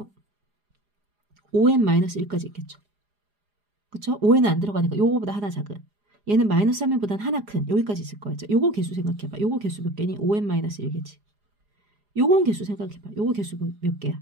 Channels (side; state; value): left; late; 4.9 ms